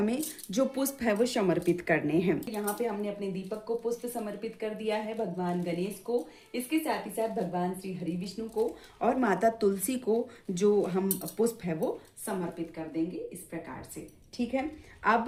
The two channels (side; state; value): both; identical; correlation 1.00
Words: जो पुष्प है वो समर्पित करने हैं। यहाँ पे हमने अपने दीपक को पुष्प समर्पित कर दिया है, भगवान गणेश को, इसके साथ ही साथ भगवान श्री हरि विष्णु को और माता तुलसी को जो हम पुष्प है वो समर्पित कर देंगे इस प्रकार से। ठीक है।